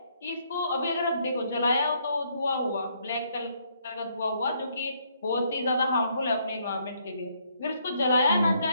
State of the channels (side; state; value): both; inverted; correlation -0.70